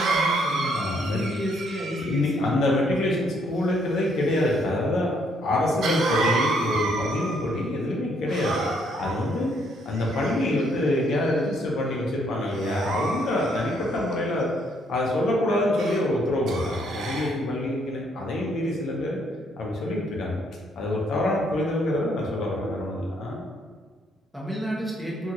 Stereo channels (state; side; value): normal; both; correlation 0.70